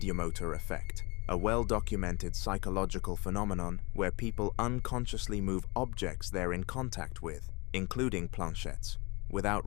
effect, a well-documented psychological phenomenon where people unconsciously move objects they're in contact with, including planchettes, without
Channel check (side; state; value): right; quieter; 27.3 dB